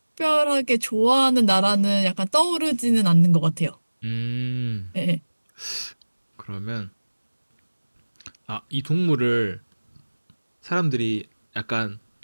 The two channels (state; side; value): inverted; both; correlation -1.00